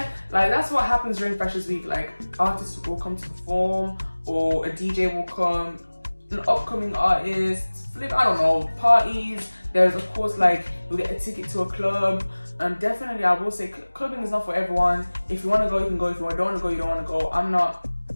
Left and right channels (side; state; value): both; inverted; correlation -1.00